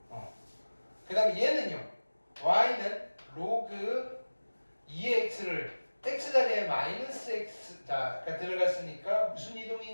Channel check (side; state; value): both; inverted; correlation -1.00